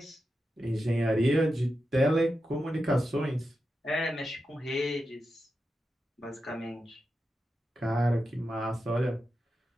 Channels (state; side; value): normal; both; correlation 0.89